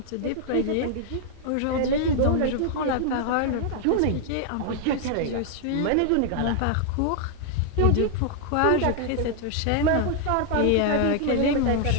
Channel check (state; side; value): different; both; correlation 0.00